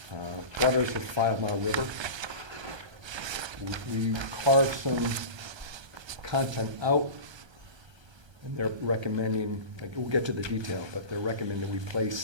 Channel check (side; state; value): left; late; 1.3 ms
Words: waters of 5 Mile River. We carved some content out, and they're recommending, like, we'll get to the detail, but they're recommending we